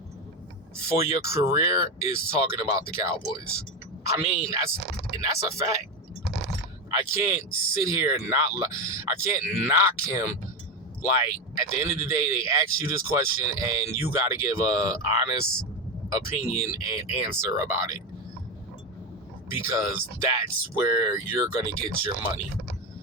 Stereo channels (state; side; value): normal; both; correlation 0.14